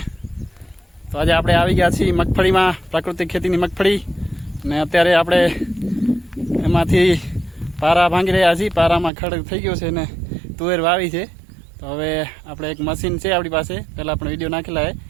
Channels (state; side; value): drops out; left; at 9.1 s